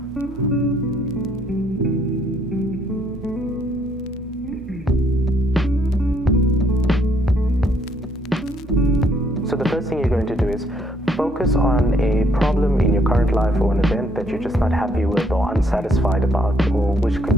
So the first thing you're going to do is focus on a problem in your current life or an event that you're just not happy with or unsatisfied about, or which could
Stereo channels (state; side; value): normal; both; correlation 0.68